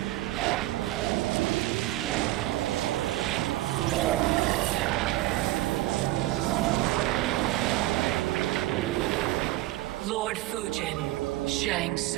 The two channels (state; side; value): quieter; left; 17.0 dB